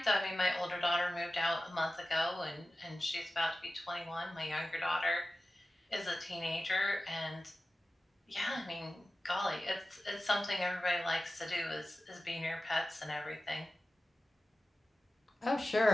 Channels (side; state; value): both; normal; correlation 0.95